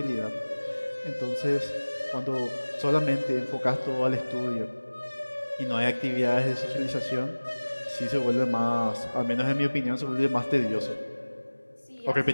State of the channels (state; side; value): inverted; both; correlation -1.00